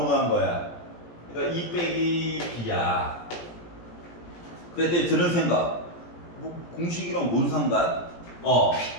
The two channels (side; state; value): right; late; 17 ms